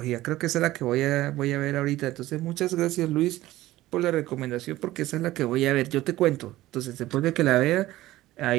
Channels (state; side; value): quieter; left; 16.3 dB